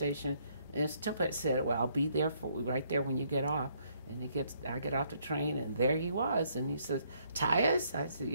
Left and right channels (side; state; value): both; inverted; correlation -0.69